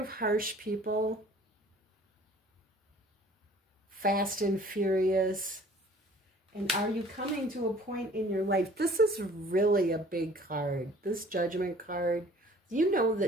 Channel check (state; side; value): normal; both; correlation 0.51